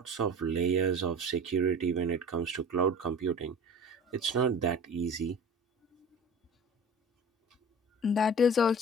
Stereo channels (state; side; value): normal; both; correlation 0.39